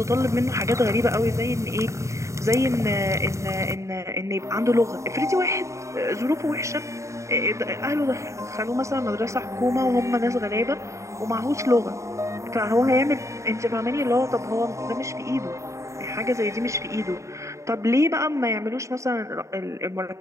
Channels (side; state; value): left; late; 0.14 ms